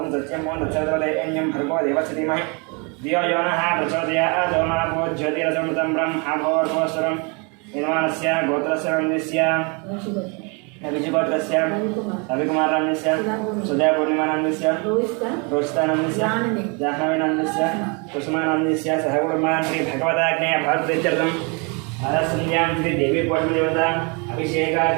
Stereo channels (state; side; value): quieter; left; 32.7 dB